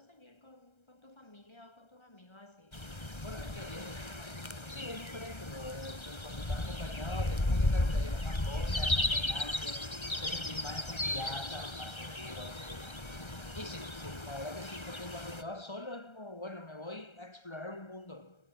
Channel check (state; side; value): late; right; 1.3 ms